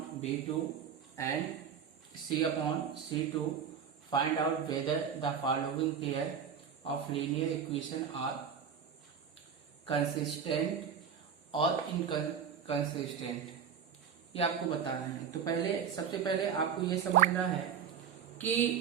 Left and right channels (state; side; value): quieter; left; 7.5 dB